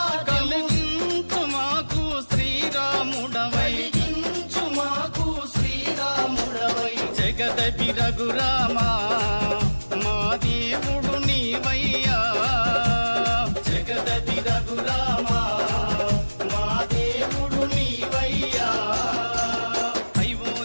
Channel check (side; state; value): both; inverted; correlation -1.00